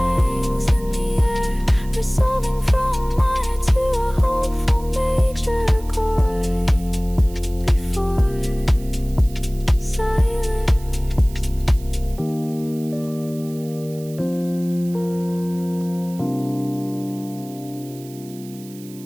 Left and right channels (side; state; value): right; noise; hiss, 21 dB below the sound